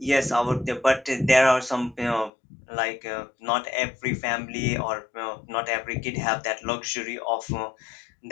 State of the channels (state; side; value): drops out; right; at 2.3 s